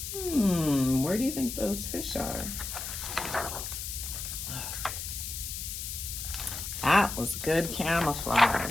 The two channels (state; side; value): noise; left; hiss, 6 dB below the sound